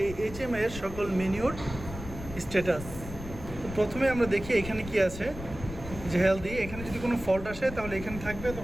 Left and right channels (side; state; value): left; noise; rumble, 11 dB below the sound